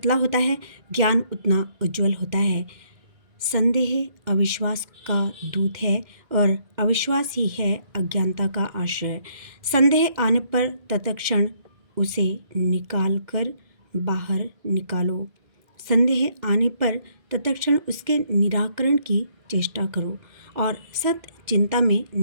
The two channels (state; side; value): late; left; 2.1 ms